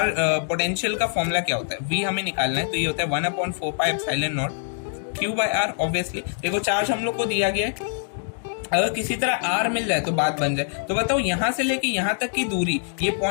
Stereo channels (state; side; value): silent; right; digital silence